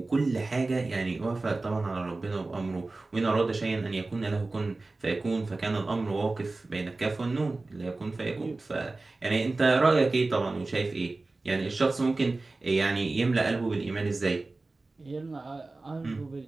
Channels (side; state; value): left; quieter; 3.3 dB